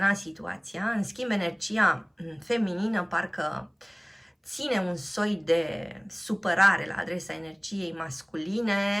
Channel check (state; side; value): identical; both; correlation 1.00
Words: situația. În schimb, energia feminină parcă ține un soi de supărare la adresa energiei masculine.